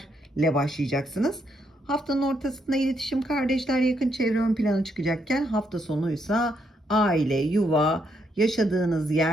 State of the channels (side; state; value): both; normal; correlation 0.76